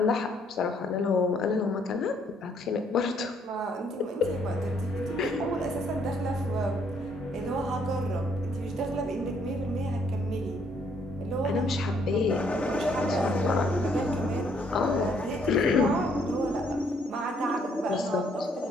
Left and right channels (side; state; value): both; normal; correlation 0.67